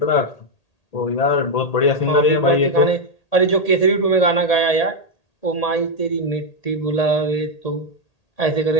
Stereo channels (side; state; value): right; late; 1.8 ms